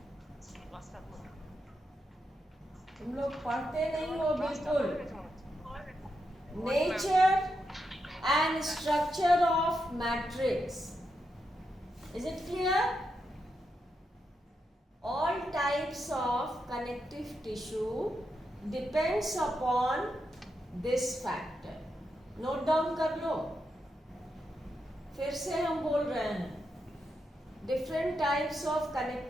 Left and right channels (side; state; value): both; normal; correlation 0.84